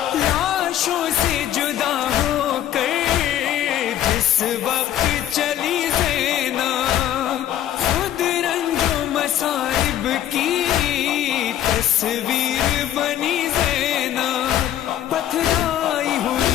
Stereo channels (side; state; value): right; quieter; 11.6 dB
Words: اس وقت چلی زینب، خود رنج و مصائب کی تصویر بنی زینب، پتھرائی